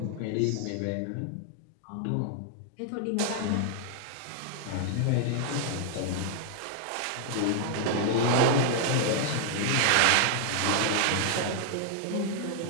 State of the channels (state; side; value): different; both; correlation 0.00